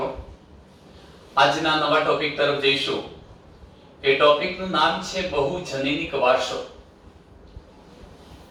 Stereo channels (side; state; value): both; identical; correlation 1.00